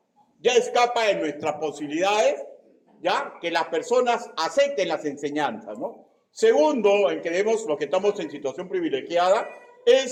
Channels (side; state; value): both; identical; correlation 1.00